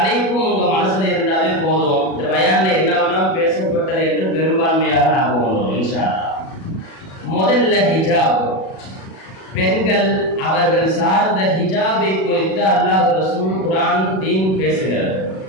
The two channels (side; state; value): right; late; 37 ms